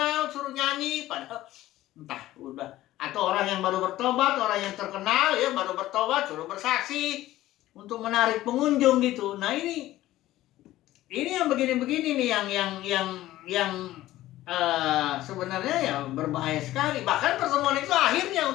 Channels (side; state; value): right; quieter; 15.4 dB